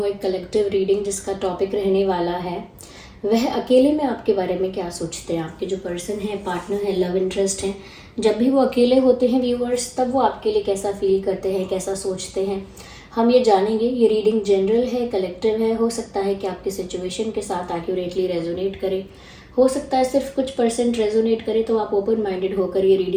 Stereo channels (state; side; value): identical; both; correlation 1.00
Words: एक कलेक्टिव रीडिंग जिसका टॉपिक रहने वाला है वह अकेले में आपके बारे में क्या सोचते हैं। आपके जो पर्सन है, पार्टनर है, लव इंटरेस्ट है, जब भी वो अकेले होते हैं व्यूअर्स, तब वो आपके लिए कैसा फील करते हैं, कैसा सोचते हैं, हम ये जानेंगे। ये रीडिंग जनरल है, कलेक्टिव है। हो सकता है कि आपकी सिचुएशन के साथ एक्यूरेटली रेजोनेट करे, हो सकता है सिर्फ कुछ परसेंट रेजोनेट करे। तो आप ओपन माइंडेड होकर ये